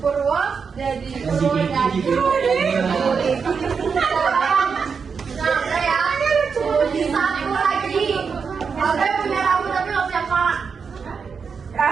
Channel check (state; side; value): quieter; left; 5.8 dB